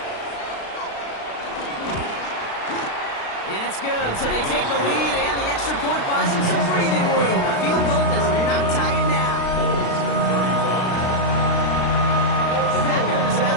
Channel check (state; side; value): late; right; 36 ms